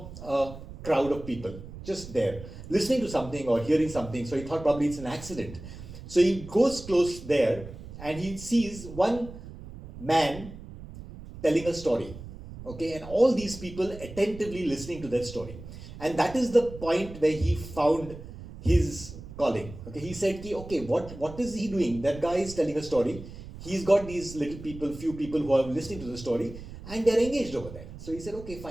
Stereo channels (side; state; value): right; noise; rumble, 14 dB below the sound